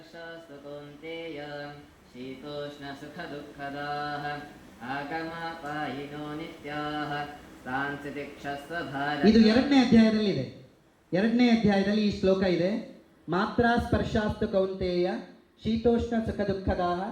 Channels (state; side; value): identical; both; correlation 1.00